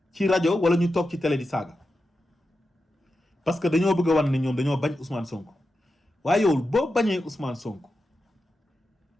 ci rajo wala ñu toog ci télé di saaga parce que dañoo bëgg a wan ne ñoom dañoo bañ Ousmane Sonko waaye yow boo bañee Ousmane Sonko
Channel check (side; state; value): both; normal; correlation 0.90